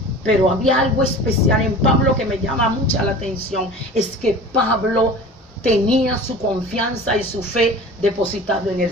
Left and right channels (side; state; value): both; normal; correlation 0.39